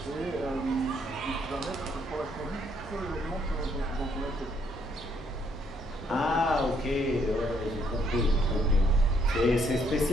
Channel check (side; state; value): both; normal; correlation 0.70